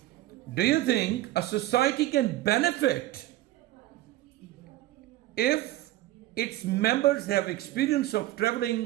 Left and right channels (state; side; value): quieter; left; 15.7 dB